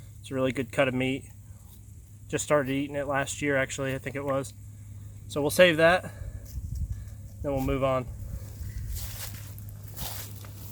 It's a really good cut of meat. Just started eating it last year, actually, I think it was. So we'll save that, then we'll move on.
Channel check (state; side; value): identical; both; correlation 1.00